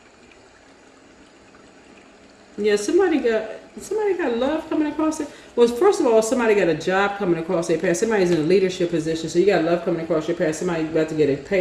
somebody got love coming across it. Well, first of all, somebody got a job coming across their path. Somebody's in a leadership position, so you got love coming across your path. Somebody about to get a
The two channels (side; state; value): both; identical; correlation 1.00